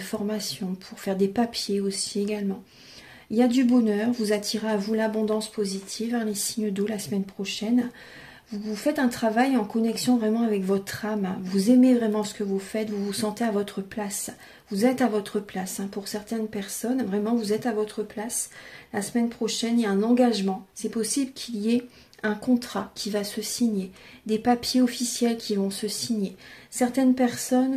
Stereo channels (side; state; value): both; identical; correlation 1.00